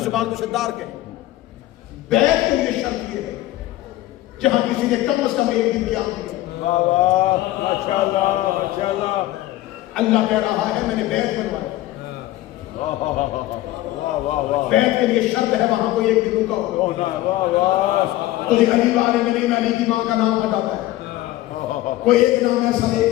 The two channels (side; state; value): right; quieter; 15.9 dB